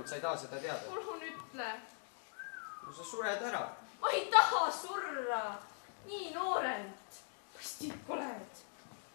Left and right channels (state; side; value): silent; right; 51 dB below the other